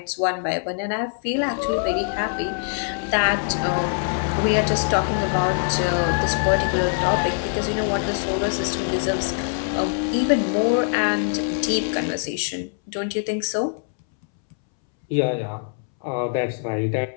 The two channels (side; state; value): right; silent; 63 dB below the other